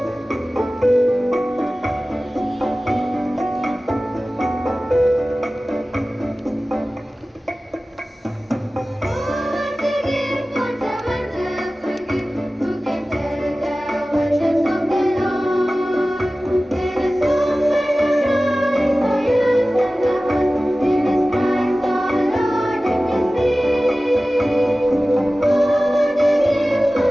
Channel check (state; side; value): normal; both; correlation 0.96